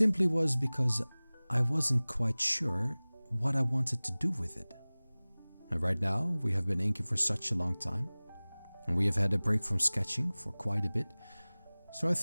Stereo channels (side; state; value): both; inverted; correlation -1.00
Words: was because I wasn't quite sure what I wanted to do with it. And right now, we have been inking for such a long time, and we have had a break from sketching for quite a bit, so I